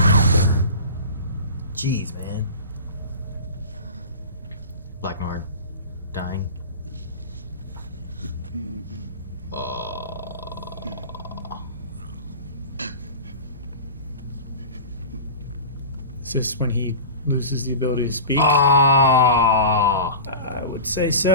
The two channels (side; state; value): both; inverted; correlation -0.32